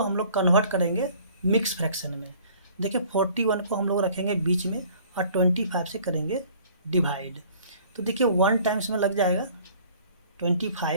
हम लोग कन्वर्ट करेंगे मिक्स फ्रैक्शन में। देखिए 41 को हम लोग रखेंगे बीच में और 25 से करेंगे डिवाइड। तो देखिए 1 टाइम्स में लग जाएगा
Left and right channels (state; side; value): inverted; both; correlation -0.54